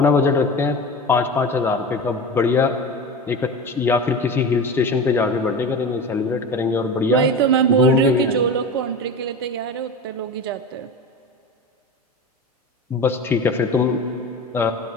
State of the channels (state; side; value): normal; both; correlation 0.29